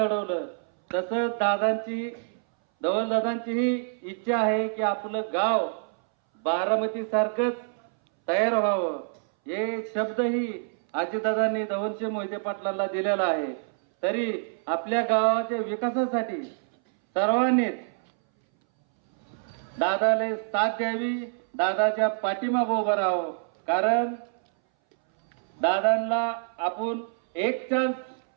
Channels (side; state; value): left; silent; 60 dB below the other